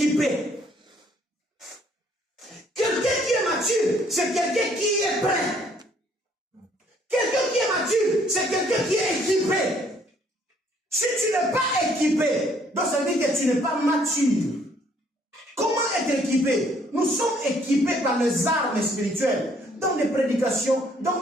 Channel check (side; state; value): both; normal; correlation 0.64